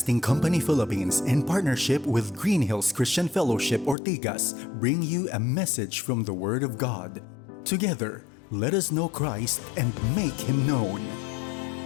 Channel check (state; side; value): drops out; right; at 4.0 s